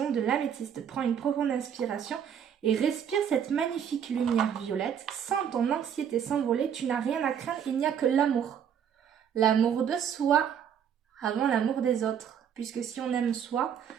de l'améthyste. Prends une profonde inspiration et respire cette magnifique lumière violette. Sens ton anxiété s'envoler. Tu n'as rien à craindre, il n'y a que l'amour. L'amour de soi avant l'amour des autres. Puisque si on aime soi,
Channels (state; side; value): quieter; left; 8.4 dB